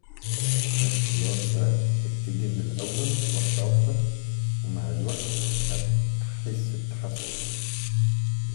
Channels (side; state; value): right; silent; digital silence